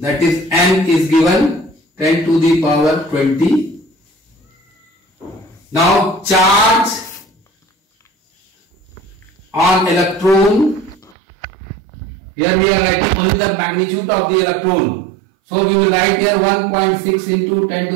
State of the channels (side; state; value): left; drops out; at 11.2 s